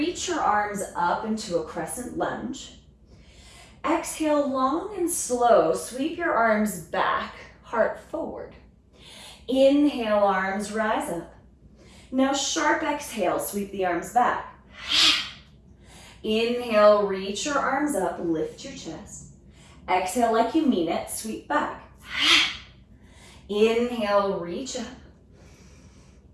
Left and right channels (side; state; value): both; identical; correlation 1.00